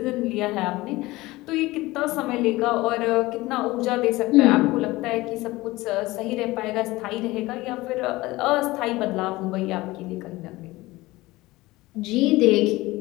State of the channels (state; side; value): quieter; right; 19.7 dB